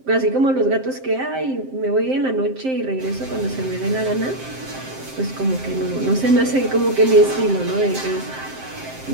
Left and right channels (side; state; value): left; late; 7.6 ms